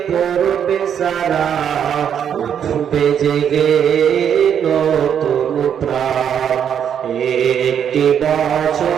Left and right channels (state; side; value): quieter; left; 8.6 dB